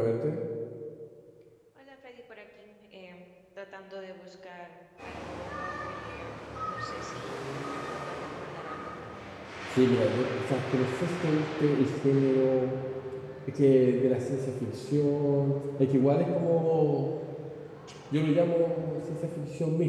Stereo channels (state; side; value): identical; both; correlation 1.00